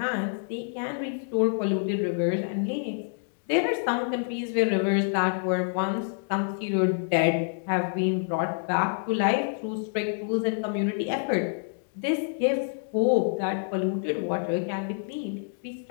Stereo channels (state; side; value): silent; right; digital silence